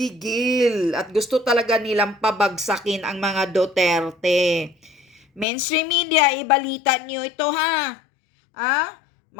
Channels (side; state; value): right; drops out; at 5.5 s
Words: at gusto talaga nilang pabagsakin ang mga Duterte. Mainstream media, ibalita niyo ito